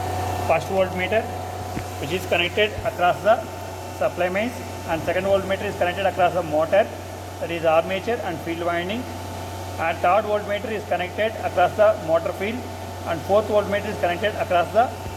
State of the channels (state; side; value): identical; both; correlation 1.00